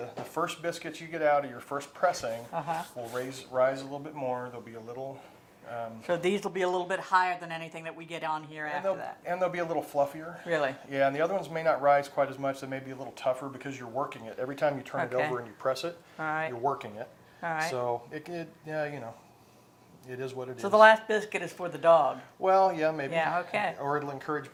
the first biscuits you get out of your first pressing Uh-huh. will rise a little bit more. There'll be a little. So these will be a little bit higher than anything that we get on here after that. And they'll be a little fluffier. Really? Yeah, and the other ones may not rise quite as much. They may be a little tougher because you're working it. Every time you turn it Okay. over and you press it, All right. you're working it. All right. So it could, yeah, you know, it is what it is. So the last biscuit is for the dog. Well, yeah, maybe. Yeah, okay. Or it'll encourage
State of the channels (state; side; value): identical; both; correlation 1.00